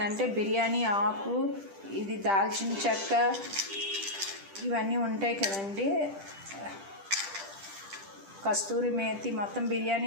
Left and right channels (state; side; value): late; left; 10 ms